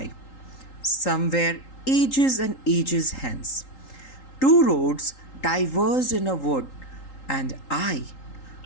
somewhere ages and ages hence. Two roads diverged in a wood, and I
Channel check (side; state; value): right; late; 3.8 ms